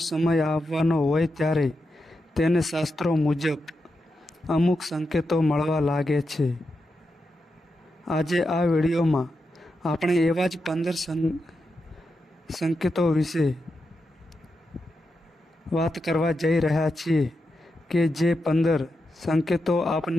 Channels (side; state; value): both; normal; correlation 0.87